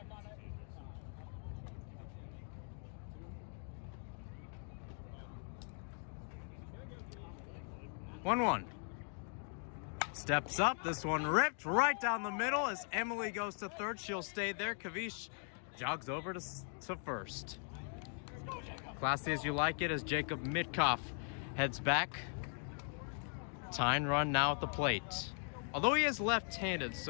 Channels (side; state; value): right; silent; 51 dB below the other